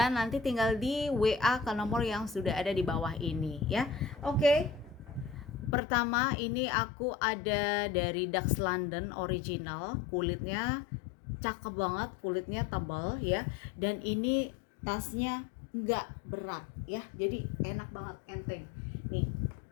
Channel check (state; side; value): drops out; right; at 5.8 s